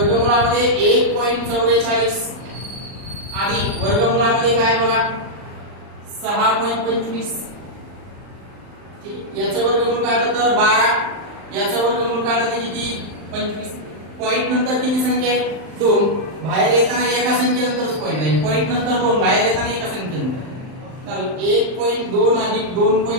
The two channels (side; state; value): left; late; 39 ms